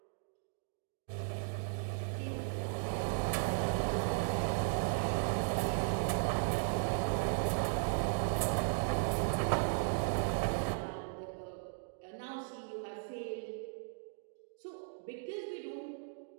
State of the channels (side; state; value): left; silent; digital silence